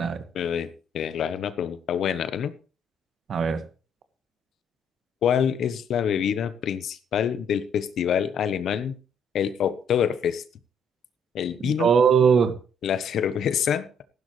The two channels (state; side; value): normal; both; correlation 0.66